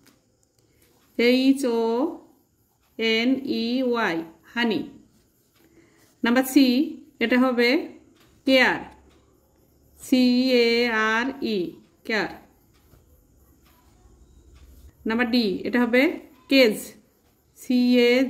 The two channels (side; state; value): both; identical; correlation 1.00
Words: HONEY honey. Number C এটা হবে care, CARE care. Number D এটা হবে cage,